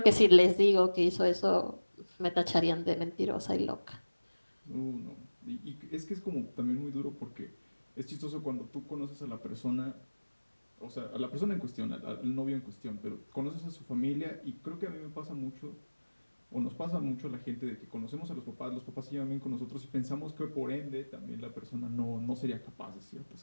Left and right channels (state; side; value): inverted; both; correlation -1.00